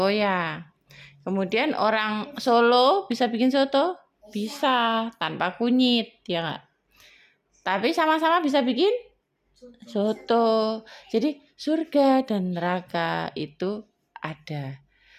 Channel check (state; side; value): identical; both; correlation 1.00